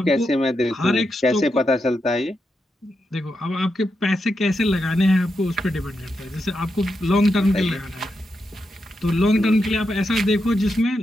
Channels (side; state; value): both; normal; correlation 0.85